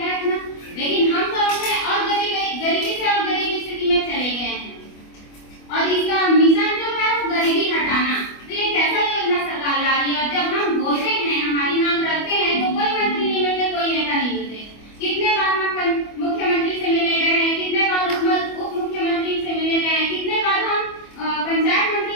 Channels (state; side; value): late; right; 25 ms